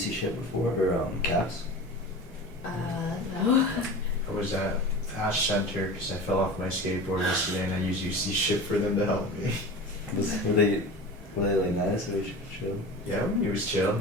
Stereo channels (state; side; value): normal; both; correlation 0.33